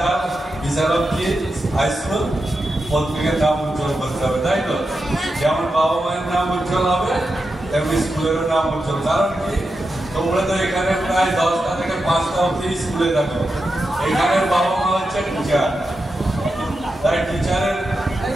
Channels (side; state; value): both; normal; correlation 0.89